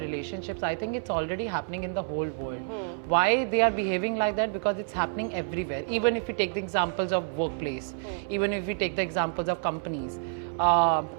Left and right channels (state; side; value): silent; left; 59 dB below the other